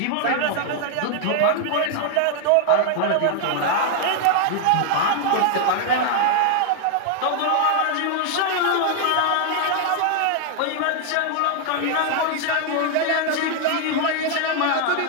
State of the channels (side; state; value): both; different; correlation 0.00